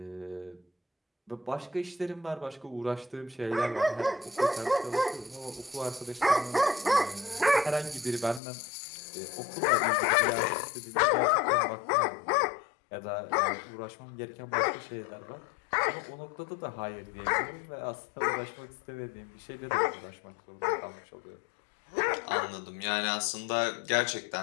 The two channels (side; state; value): right; drops out; at 8.4 s